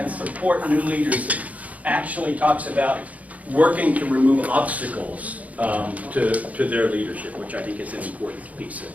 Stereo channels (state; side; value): late; left; 0.071 ms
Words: support new leaders actually talks about working to remove obstacles to their leadership, which I think is an important piece of